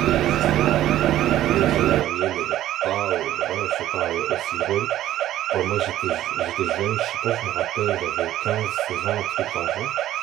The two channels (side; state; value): left; quieter; 13.2 dB